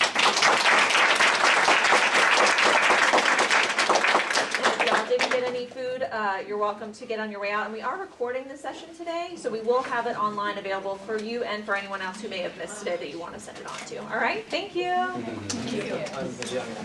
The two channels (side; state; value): both; identical; correlation 1.00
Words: If y'all didn't get any food, you're welcome to get on your way out. And we are recording this session today, so we will have it online available for you and for anyone else who may have missed today that you want to send it on to. All right, thank you. Thank you.